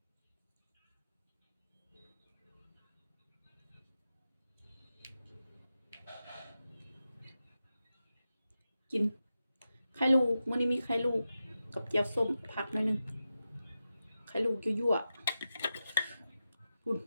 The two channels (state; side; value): inverted; both; correlation -0.91